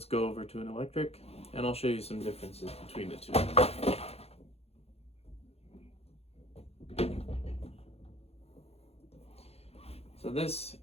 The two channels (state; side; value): late; right; 0.29 ms